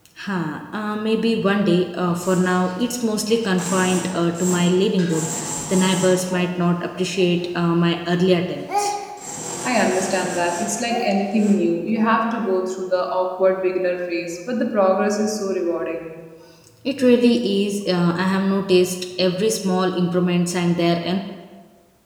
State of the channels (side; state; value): both; identical; correlation 1.00